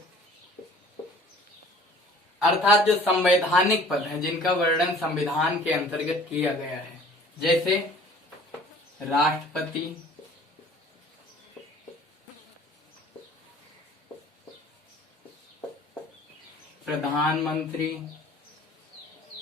अर्थात जो संवैधानिक पद हैं, जिनका वर्णन संविधान के अंतर्गत किया गया है, जैसे राष्ट्रपति, प्रधानमंत्री,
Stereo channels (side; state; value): both; normal; correlation 0.50